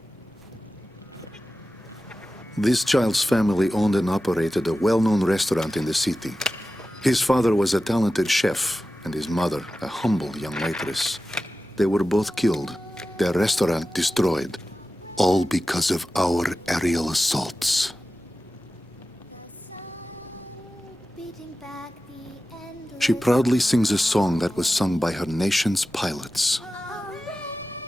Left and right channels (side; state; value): both; normal; correlation 0.94